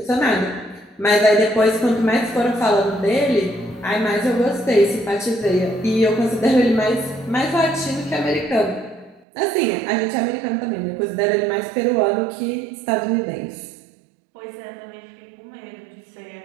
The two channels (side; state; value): left; drops out; at 9.2 s